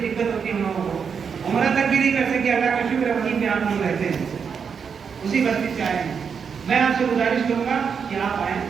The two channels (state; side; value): quieter; left; 6.4 dB